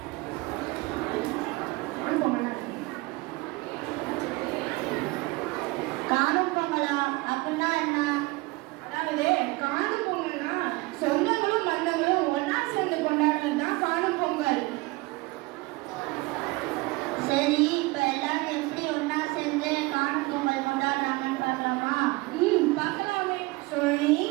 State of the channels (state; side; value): quieter; left; 23.1 dB